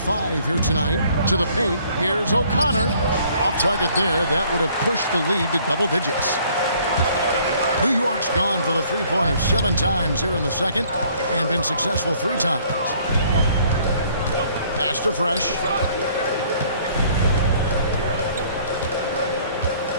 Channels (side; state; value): both; inverted; correlation -0.60